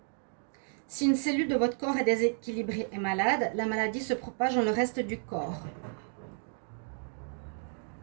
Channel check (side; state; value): left; silent; 56 dB below the other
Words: Si une cellule de votre corps est déséquilibrée et malade, la maladie se propage dans le reste du corps.